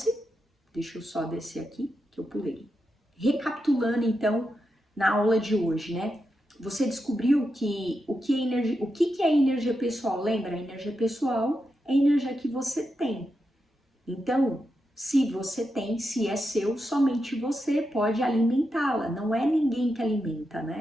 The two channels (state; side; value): normal; both; correlation 0.87